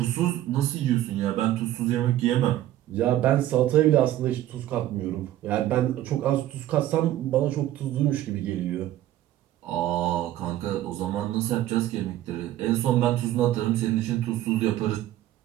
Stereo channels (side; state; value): left; quieter; 13.6 dB